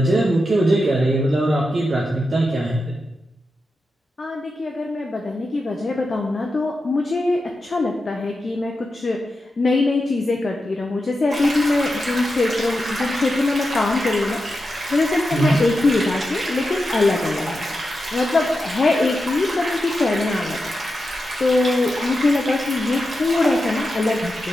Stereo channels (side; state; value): both; normal; correlation 0.89